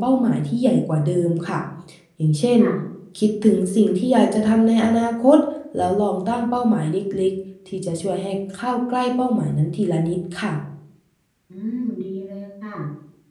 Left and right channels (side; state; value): both; identical; correlation 1.00